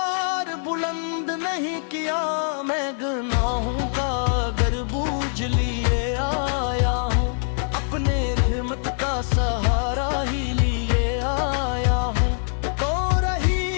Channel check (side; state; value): right; silent; 63 dB below the other